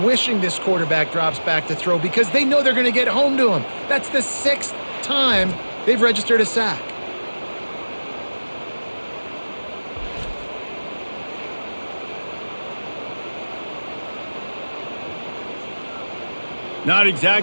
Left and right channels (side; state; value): both; inverted; correlation -1.00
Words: wishing this quarterback drops back to throw because they know they're going to get home to him. That's the 6th time they've registered a sack. Not